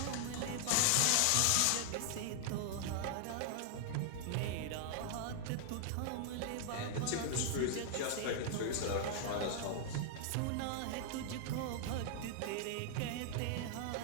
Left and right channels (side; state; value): both; different; correlation 0.00